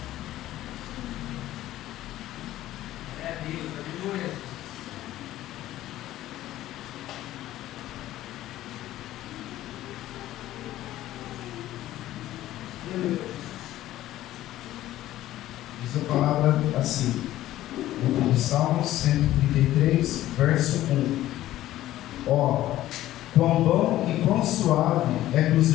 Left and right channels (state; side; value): quieter; right; 14.3 dB